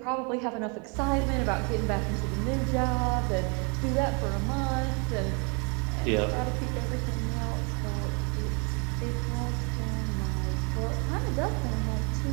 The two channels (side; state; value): left; quieter; 34.2 dB